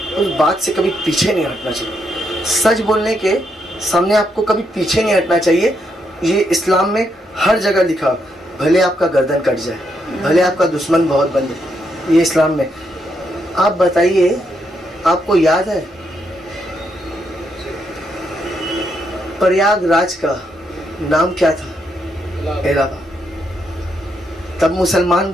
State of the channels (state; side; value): normal; both; correlation 0.78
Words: उस बात से कभी पीछे नहीं हटना चाहिए। सच बोलने के सामने आपको कभी पीछे नहीं हटना चाहिए। ये इस्लाम में हर जगह लिखा, भले आपका गर्दन कट जाए, भले आपका दुश्मन बहुत बन जाए, ये इस्लाम में। आप बताइए, आपको याद है प्रयागराज का नाम क्या था? इलाहाबाद। तब मुसलमान